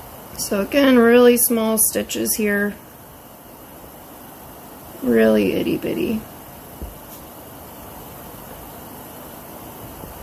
So again, really small stitches here. Really itty bitty.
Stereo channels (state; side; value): identical; both; correlation 1.00